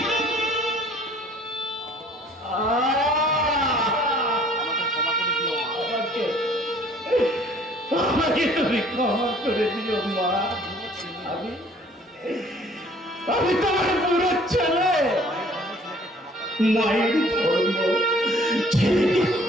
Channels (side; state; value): both; normal; correlation 0.56